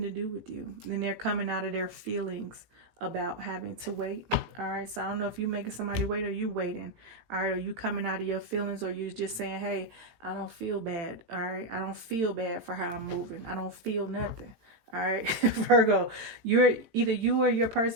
to do with you. And they're coming out of their feelings about having to wait. All right, so I don't know if you making somebody wait or you waiting. All right, are you coming out of your feelings, or you're just saying, hey, I don't feel bad. All right, I don't feel bad for how I'm moving. I don't feel nothing. All right, Virgo, either you or your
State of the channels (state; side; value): late; left; 18 ms